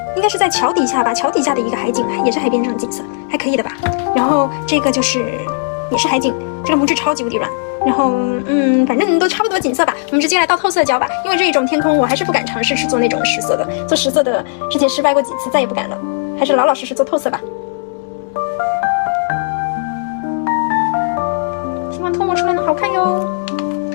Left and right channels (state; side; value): silent; right; digital silence